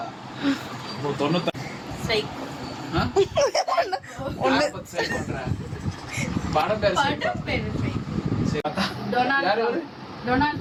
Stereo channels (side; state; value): both; identical; correlation 1.00